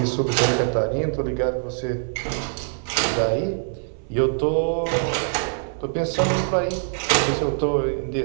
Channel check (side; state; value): left; silent; 63 dB below the other